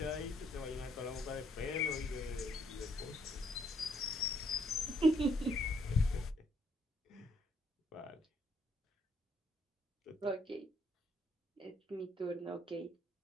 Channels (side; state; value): both; normal; correlation 0.69